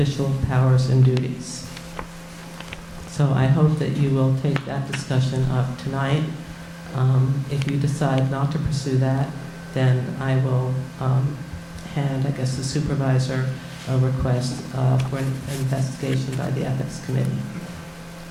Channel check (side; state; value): both; identical; correlation 1.00